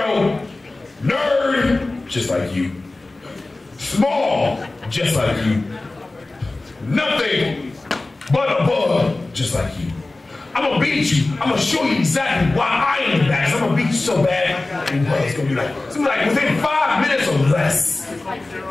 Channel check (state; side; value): quieter; right; 3.0 dB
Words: nerd, just like you. Small, just like you. Nothing but a bug, just like you. I'm gonna beat you. I'm gonna show you exactly why I am the best. I'm gonna beat you so bad, it's gonna be like within 5 minutes or less.